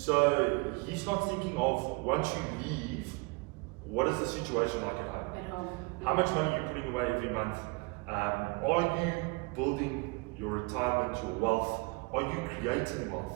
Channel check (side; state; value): left; quieter; 27.8 dB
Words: he's not thinking of, once you leave, what is the situation like at home? How much money are you putting away every month? Are you building your retirement, your wealth? Are you creating wealth?